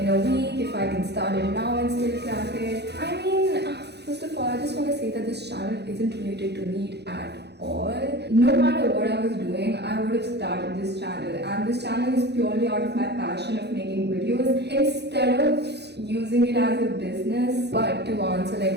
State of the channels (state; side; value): late; left; 0.49 ms